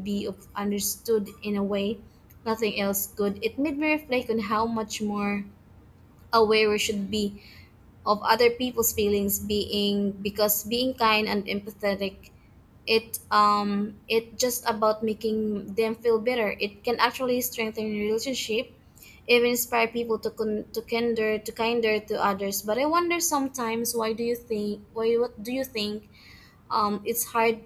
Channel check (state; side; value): identical; both; correlation 1.00